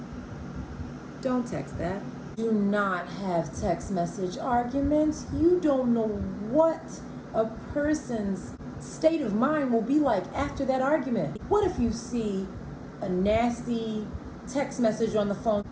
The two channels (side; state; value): both; identical; correlation 1.00